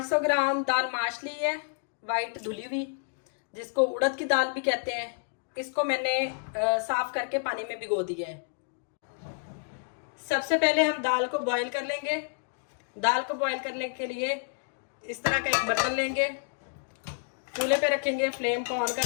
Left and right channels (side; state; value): right; silent; digital silence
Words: ग्राम दाल माश ली है, वाइट धुली हुई, जिसको उड़द की दाल भी कहते हैं। इसको मैंने साफ करके पानी में भिगो दिया है। सबसे पहले हम दाल को बॉईल कर लेंगे। दाल को बॉईल करने के लिए इस तरह का एक बर्तन लेंगे, चूल्हे पे रखेंगे, फ्लेम को ऑन